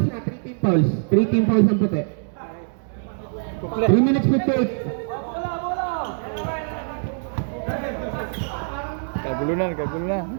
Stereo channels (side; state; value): left; silent; 63 dB below the other